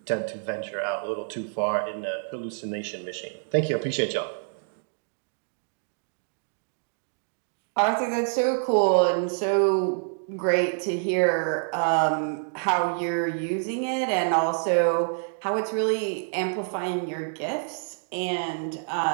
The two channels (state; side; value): silent; left; digital silence